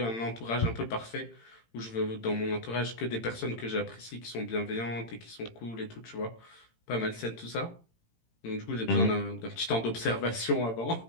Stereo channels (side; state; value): right; late; 18 ms